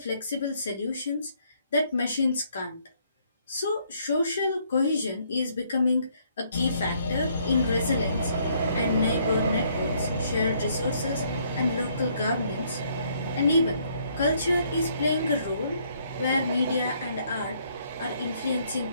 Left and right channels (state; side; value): inverted; both; correlation -0.68